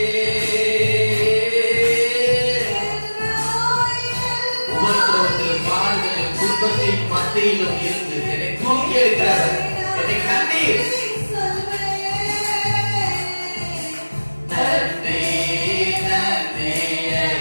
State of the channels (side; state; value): both; inverted; correlation -1.00